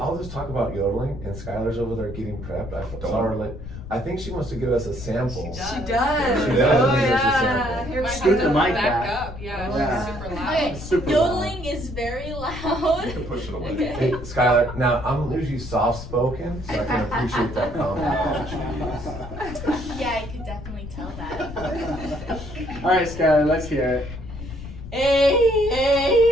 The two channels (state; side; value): noise; left; rumble, 11 dB below the sound